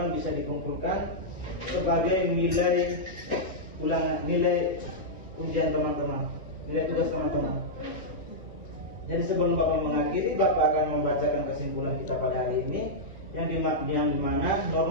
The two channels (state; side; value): normal; both; correlation -0.08